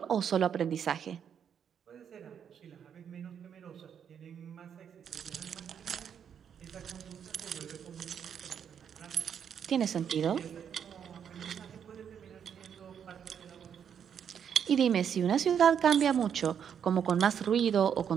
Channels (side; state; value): left; quieter; 8.1 dB